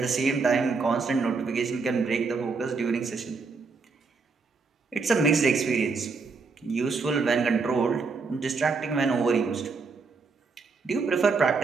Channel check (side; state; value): left; quieter; 4.4 dB